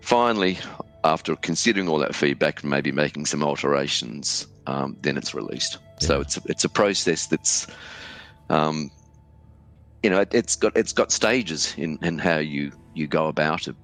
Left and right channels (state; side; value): identical; both; correlation 1.00